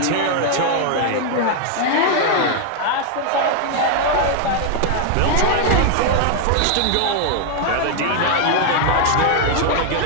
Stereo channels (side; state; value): both; different; correlation 0.00